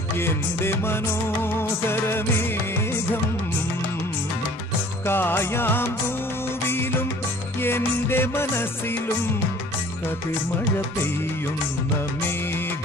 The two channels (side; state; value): both; normal; correlation 0.51